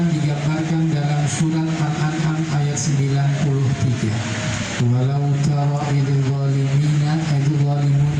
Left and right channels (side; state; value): both; identical; correlation 1.00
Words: digambarkan dalam surat Al-An'am ayat 93. Walau tara idil